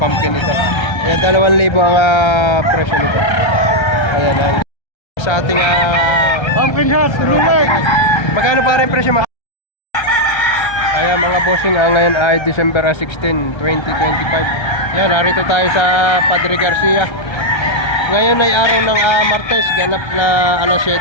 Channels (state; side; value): late; right; 1.3 ms